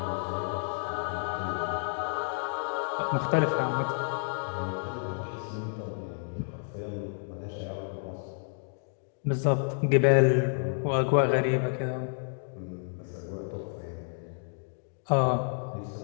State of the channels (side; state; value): right; silent; digital silence